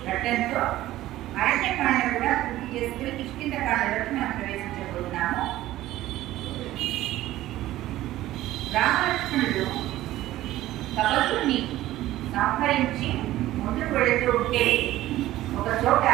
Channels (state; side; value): quieter; left; 15.2 dB